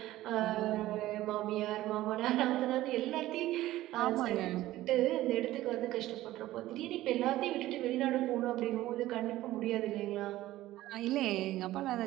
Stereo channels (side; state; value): left; quieter; 15.7 dB